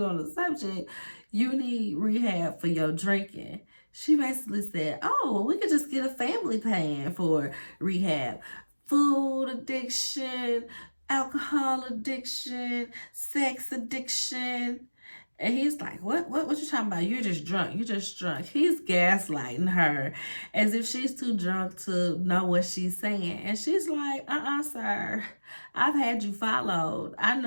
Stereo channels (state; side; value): inverted; both; correlation -1.00